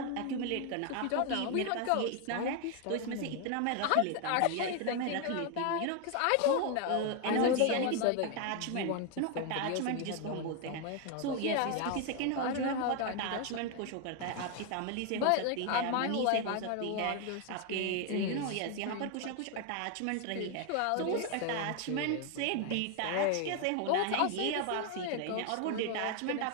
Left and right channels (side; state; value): both; different; correlation 0.01